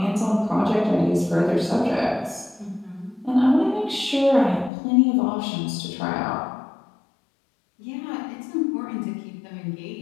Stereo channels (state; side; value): drops out; right; at 4.7 s